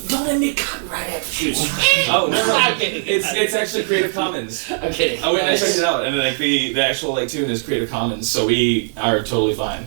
let me cut right after you. Oh no, I'm kidding. it's actually Creative Commons. I'm kidding. I went and I checked it out, and like the actual like tune is Creative Commons, so we are totally fine.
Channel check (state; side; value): silent; left; 66 dB below the other